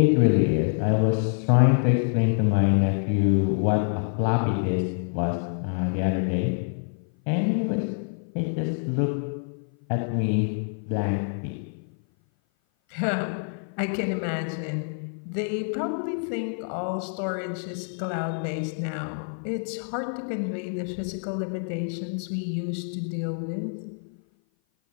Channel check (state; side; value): silent; right; 57 dB below the other